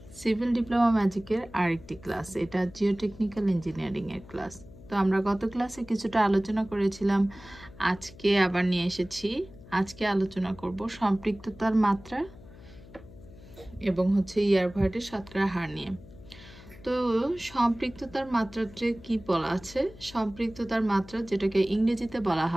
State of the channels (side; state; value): left; noise; hum, 20 dB below the sound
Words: সিভিল ডিপ্লোমা ম্যাজিকের আরেকটি ক্লাস। এটা জিওটেকনিক্যাল ইঞ্জিনিয়ারিং এর ক্লাস। তো আমরা গত ক্লাসে কিছুটা আলোচনা করেছিলাম, আজকে আবার নিয়ে এসেছি। আজকে আলোচনা করব সম্পৃক্ততার মাত্রা এবং ইয়ারভয়েডের শতকরা হার নিয়ে। তো সম্পৃক্ততার মাত্রাতে কি বলা আছে? সম্পৃক্ততার মাত্রা, যেটাকে ইংরেজিতে বলা